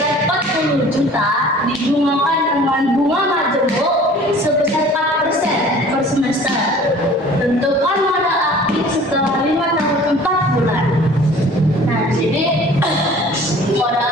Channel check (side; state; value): both; normal; correlation 0.47